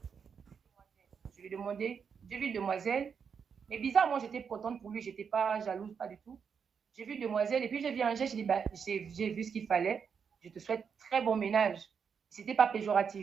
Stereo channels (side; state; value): left; quieter; 6.6 dB